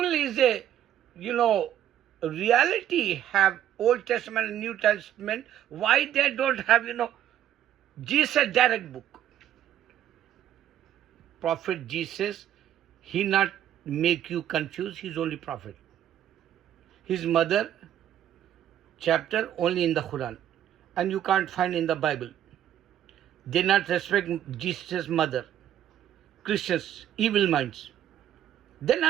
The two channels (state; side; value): quieter; left; 11.1 dB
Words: is a, reality, have Old Testament and New Testament, why they don't have, Jesus direct book? Prophet Jesus, he not make you confused, he's only prophet. His mother, chapter only in the Quran, and you can't find in the Bible. They not respect Jesus' mother. Christians, evil minds. They